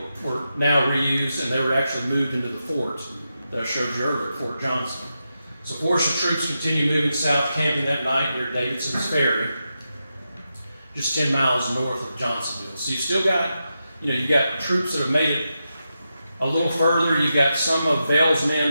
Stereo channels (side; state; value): both; inverted; correlation -0.88